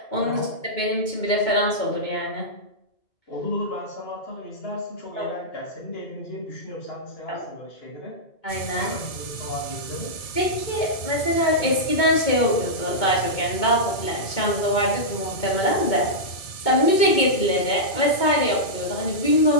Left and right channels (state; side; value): late; right; 2.2 ms